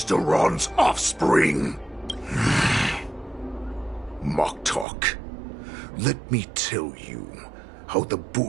Duran's offspring. Moktok, let me tell you how the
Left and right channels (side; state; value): left; drops out; at 4.9 s